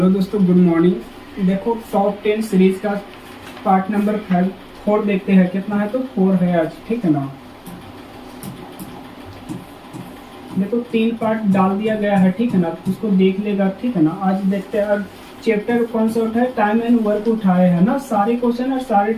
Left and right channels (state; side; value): identical; both; correlation 1.00